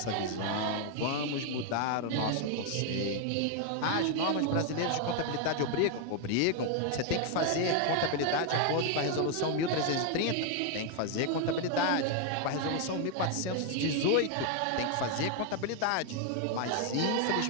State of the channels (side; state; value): both; different; correlation 0.00